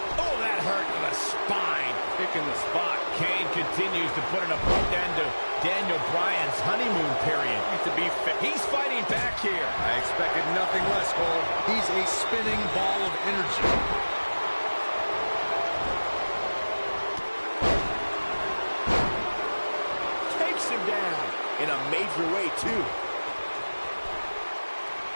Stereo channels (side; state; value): both; inverted; correlation -1.00